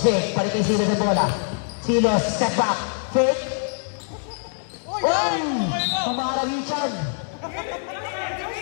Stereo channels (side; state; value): right; silent; digital silence